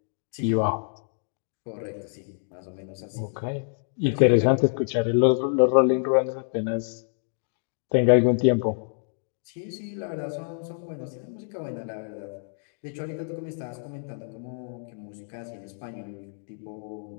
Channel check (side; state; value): right; silent; digital silence